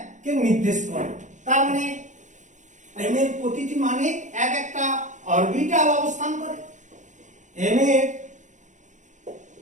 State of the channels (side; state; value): left; late; 0.36 ms